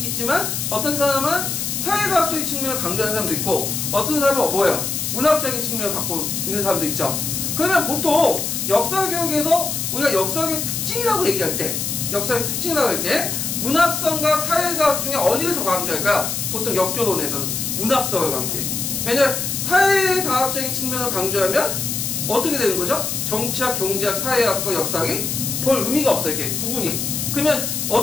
어떤 사람은 사회과학적인 측면을 강조하는 사람도 있고 어떤 사람은 뭐예요? 문학적인 측면을 갖고 있는 사람도 있죠. 그러면 보통 역사교육에서 우리가 역사교육 특징이라고 얘기할 때 역사의 특징이라고 할게. 문학성과 사회과학 중에 어디를 더 강조할까요? 보통 역교론에서는 문학성을 강조해. 왜냐면 사회과학적인 측면을 강조하면 어떻게 되는 거죠? 정치학, 경제학, 사회학과 역사학이 별 의미가 없어요. 이렇게 구분이. 그러면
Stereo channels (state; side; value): noise; left; hiss, 2 dB below the sound